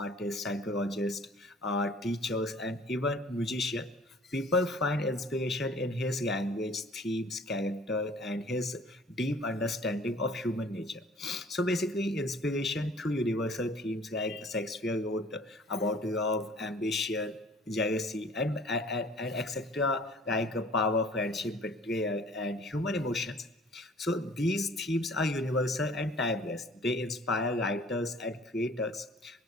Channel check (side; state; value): both; normal; correlation 0.51